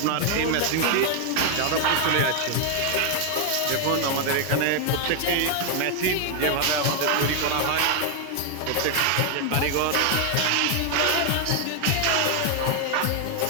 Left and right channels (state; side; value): different; both; correlation 0.00